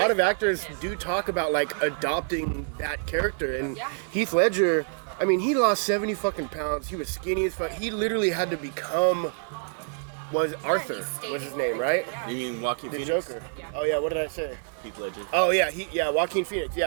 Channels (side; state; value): left; silent; digital silence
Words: did of fuck actors with him. do talk about like adopting that character. And Yeah. Heath Ledger, I mean, he lost 70 fucking pounds. He was skinny as fuck. He literally had to become Arthur. he stayed was in his name, character, right? yeah. You mean Joaquin The Phoenix? Joker. Yeah. Oh yeah, what did I say? Heath Ledger. Oh yeah, Joaquin Phoenix.